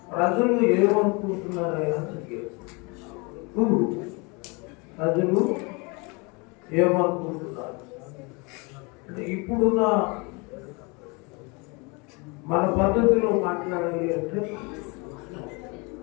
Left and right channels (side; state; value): right; quieter; 29.2 dB